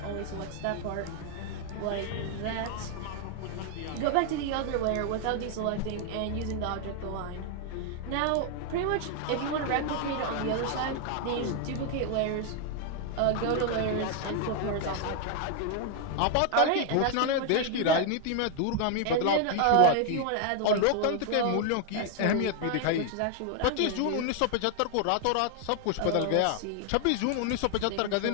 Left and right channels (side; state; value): both; different; correlation 0.00